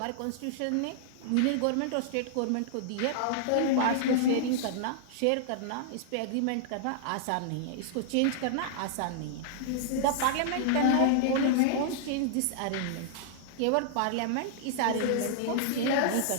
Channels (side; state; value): both; different; correlation -0.01